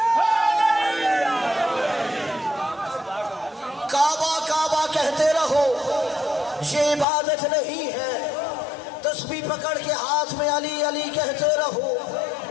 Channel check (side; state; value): right; drops out; at 7.1 s